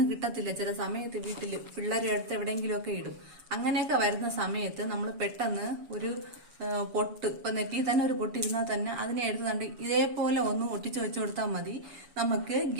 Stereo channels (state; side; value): late; left; 7.0 ms